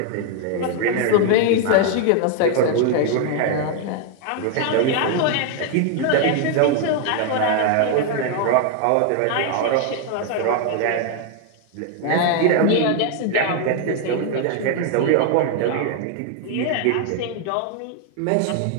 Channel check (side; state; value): both; different; correlation 0.00